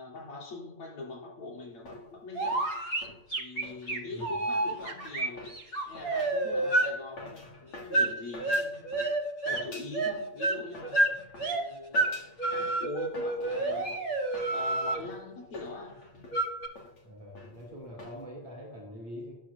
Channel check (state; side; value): late; right; 8.7 ms